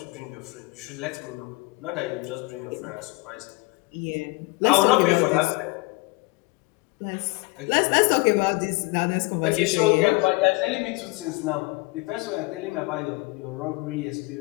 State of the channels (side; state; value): right; quieter; 24.5 dB